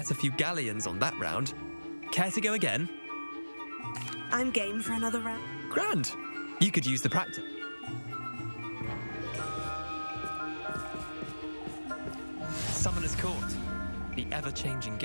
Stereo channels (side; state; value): both; inverted; correlation -1.00